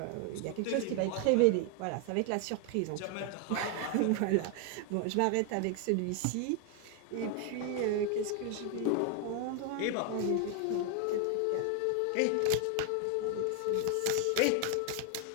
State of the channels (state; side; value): different; both; correlation 0.00